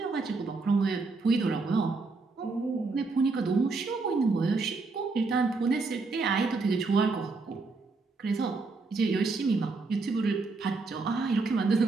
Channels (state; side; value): quieter; left; 3.9 dB